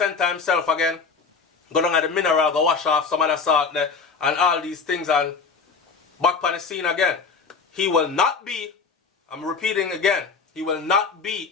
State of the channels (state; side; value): quieter; right; 5.1 dB